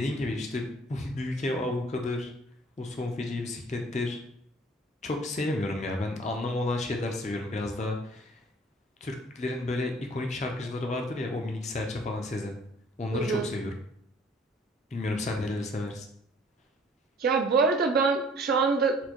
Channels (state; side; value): normal; both; correlation 0.54